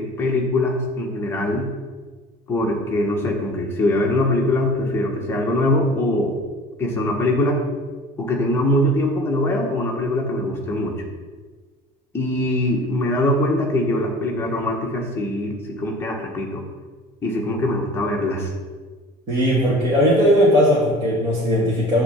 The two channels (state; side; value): normal; both; correlation 0.44